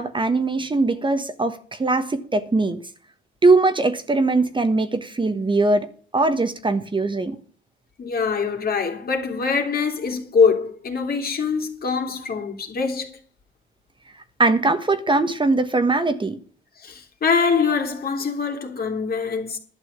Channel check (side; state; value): both; normal; correlation 0.51